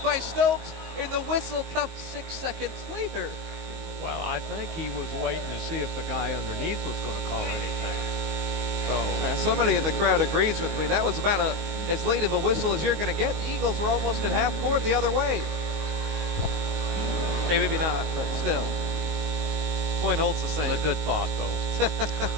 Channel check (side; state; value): left; late; 19 ms